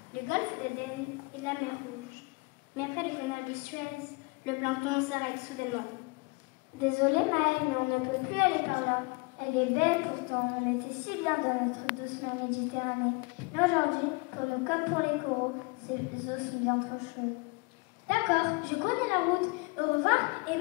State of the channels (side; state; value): right; quieter; 28.5 dB